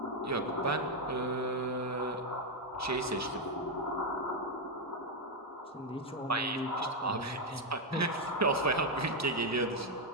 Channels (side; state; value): both; normal; correlation 0.02